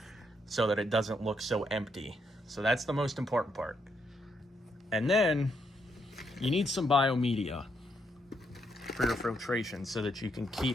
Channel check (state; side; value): normal; both; correlation 0.77